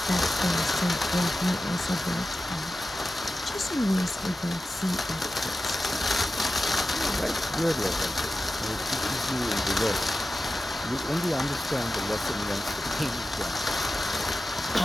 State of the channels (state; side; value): normal; both; correlation 0.93